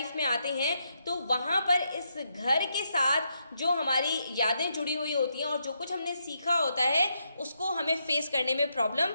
में आते हैं, तो वहाँ पर इस घर के साथ जो हमारी यादें जुड़ी हुई होती हैं और जो कुछ हमने सीखा होता है उसको हमें फेस करने में प्रॉब्लम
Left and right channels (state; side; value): inverted; both; correlation -0.80